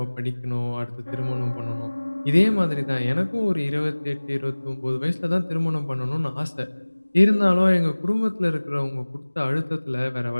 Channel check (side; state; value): both; inverted; correlation -1.00